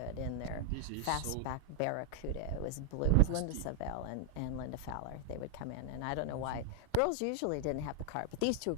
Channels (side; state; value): both; different; correlation 0.00